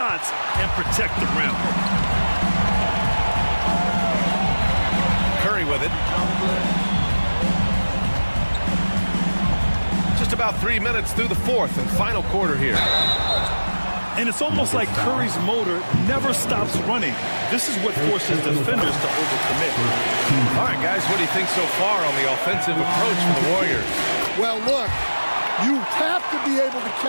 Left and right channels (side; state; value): both; inverted; correlation -1.00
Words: and protect the rim. Curry with it. Just about 3 minutes through the fourth and final quarter here. And it's almost like Curry's motor never stops running. This is what forces defenders to overcommit. All right, guys, what do you think so far on the offensive approach for the Warriors? Well, look, you have to be able to